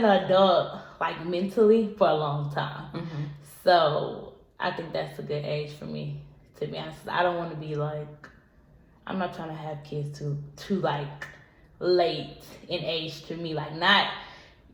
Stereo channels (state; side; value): identical; both; correlation 1.00